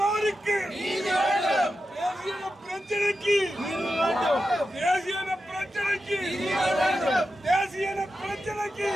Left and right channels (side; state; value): both; normal; correlation 0.90